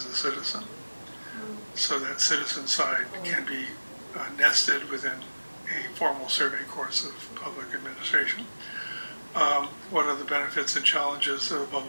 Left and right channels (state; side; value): inverted; both; correlation -1.00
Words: a citizen. So that citizen side can be nested within a formal survey course of public administration. What are the benefits and challenges of a